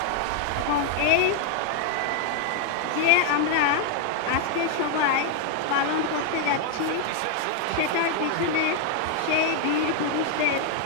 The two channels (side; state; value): both; different; correlation 0.00